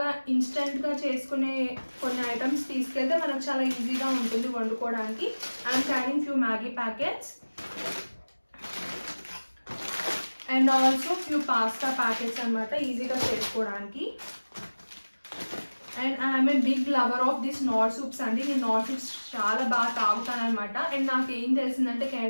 ఇన్స్టెంట్గా చేసుకునే కొన్ని ఐటమ్స్ తీసుకెళ్తే మనకు చాలా ఈజీగా ఉంటుంది వండుకోవడానికి. I'm carrying few Maggi packets and also few pasta packets అనమాట, ఈజీగా చేసుకోవడానికి. And I'm a big lover of this Knorr soups అండి. నేను నార్ సూప్స్ చాలా బాగా తాగుతాను అనమాట. అండ్ నాకు ఏం తెలిసిందంటే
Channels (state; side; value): inverted; both; correlation -1.00